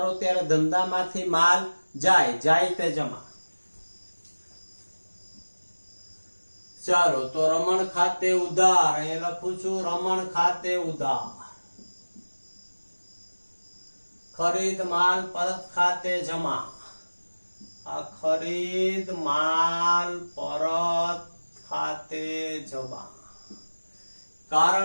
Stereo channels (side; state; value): both; inverted; correlation -1.00